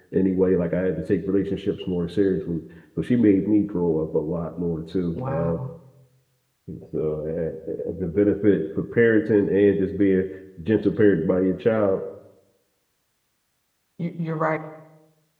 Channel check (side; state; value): both; identical; correlation 1.00